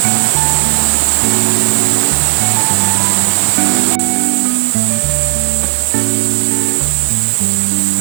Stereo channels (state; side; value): silent; left; digital silence